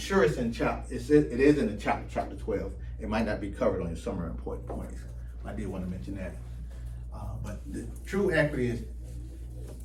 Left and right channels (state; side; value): identical; both; correlation 1.00